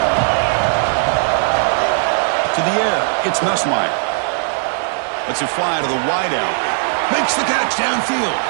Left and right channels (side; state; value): left; silent; 68 dB below the other